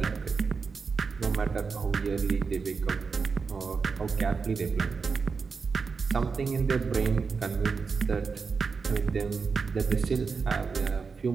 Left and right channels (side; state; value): left; quieter; 5.1 dB